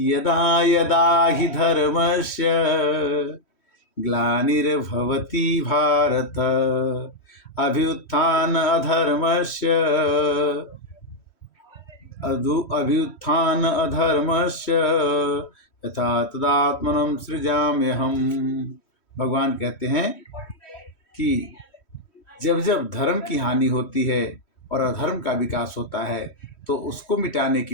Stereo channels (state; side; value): late; right; 3.1 ms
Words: यदा यदा हि धर्मस्य ग्लानिर्भवति भारत अभ्युत्थान अधर्मस्य अभ्युत्थान अधर्मस्य यथा तदात्मनं सृजाम्यहम्। भगवान कहते हैं कि जब जब धर्म की हानि होती है और अधर्म का विकास होता है तो उसको मिटाने